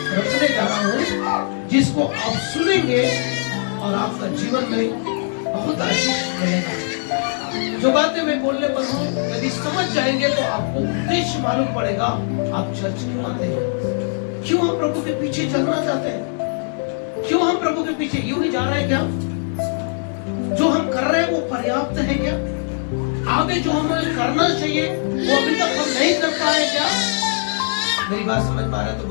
रखने जा रहा हूँ जिसको आप सुनेंगे और आपका जीवन में बहुत आशीष मिलेगा। जो बातें मैं बोलने पर हूँ यदि समझ जाएंगे तो आपको उद्देश्य मालूम पड़ेगा। आप चर्च क्यों आते हैं, क्यों हम प्रभु के पीछे चलना चाहते हैं, क्यों हम प्रभु के पीछे यूं ही जा रहे हैं। क्या जो हम कर रहे हैं वो पर्याप्त है क्या? आगे जो हमें करना चाहिए वो अभी तक हम नहीं कर पाए क्या? मेरी बात समझ पा रहे तो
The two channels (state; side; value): silent; right; 65 dB below the other